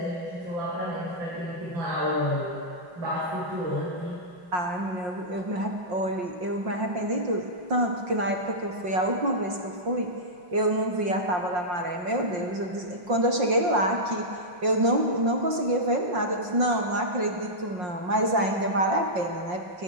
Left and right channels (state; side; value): late; left; 5.6 ms